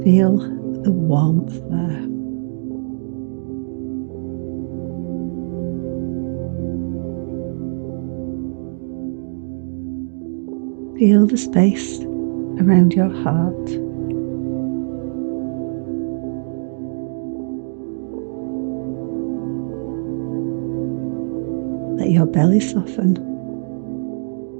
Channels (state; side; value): silent; left; digital silence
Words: Feel the warmth there. Feel the space around your heart. Let your belly soften.